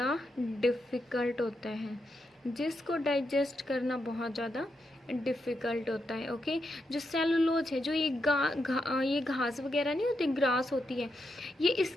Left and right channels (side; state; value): both; normal; correlation 0.83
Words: डिफ़िकल्ट होता है। जिसको डाइजेस्ट करना बहुत ज़्यादा डिफ़िकल्ट होता है। ओके, जो सेलुलोज है, जो ये ये घास वगैरह नहीं होती, ग्रास होती है, ये